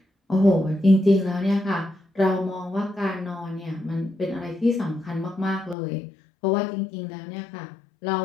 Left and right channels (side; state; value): right; drops out; at 5.8 s